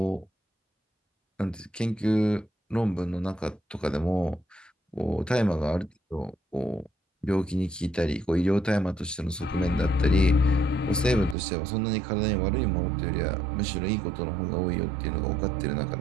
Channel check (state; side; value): drops out; left; at 11.4 s